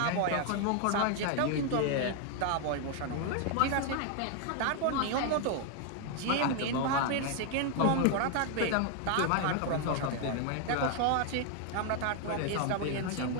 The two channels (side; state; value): both; different; correlation 0.00